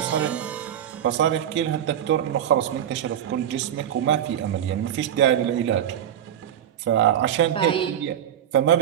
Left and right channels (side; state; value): left; quieter; 10.2 dB